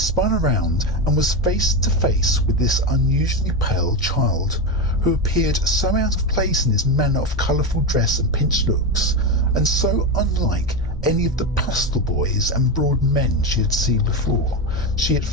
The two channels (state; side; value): normal; both; correlation 0.14